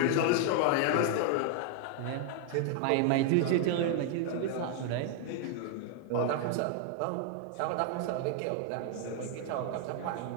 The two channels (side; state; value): both; different; correlation 0.00